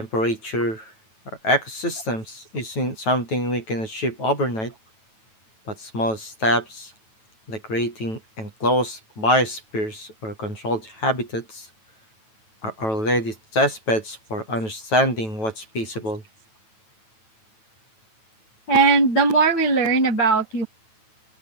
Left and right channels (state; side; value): late; right; 9.2 ms